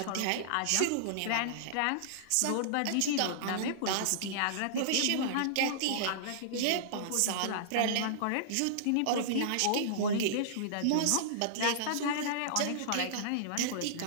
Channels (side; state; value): both; different; correlation -0.02